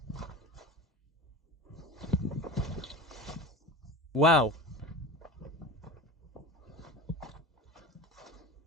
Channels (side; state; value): both; normal; correlation 0.31